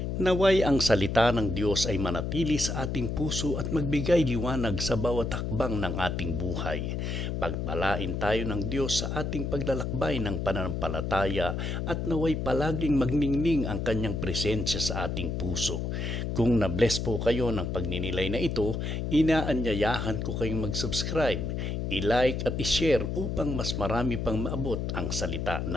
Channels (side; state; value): left; noise; hum, 2 dB below the sound